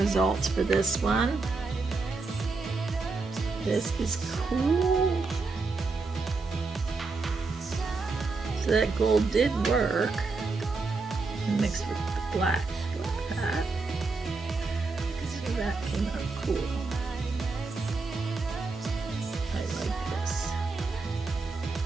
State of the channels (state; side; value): quieter; left; 3.9 dB